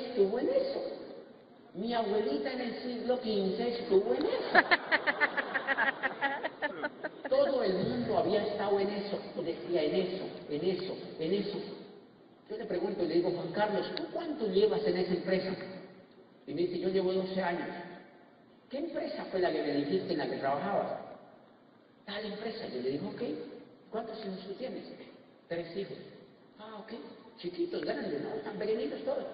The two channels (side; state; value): both; identical; correlation 1.00